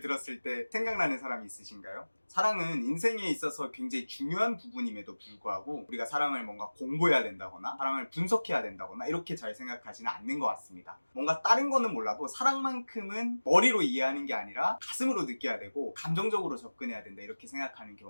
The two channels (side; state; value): both; inverted; correlation -1.00